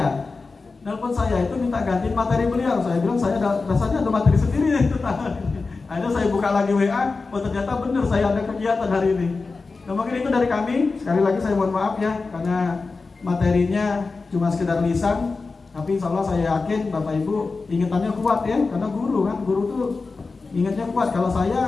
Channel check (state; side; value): quieter; right; 4.1 dB